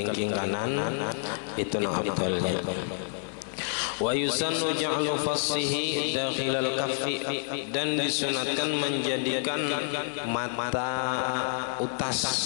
kanan itu nang afdalnya. Wa yusannu ja'lu fassihi dakhilal kaffi, dan disunatkan menjadikan mata utas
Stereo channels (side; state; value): right; silent; 55 dB below the other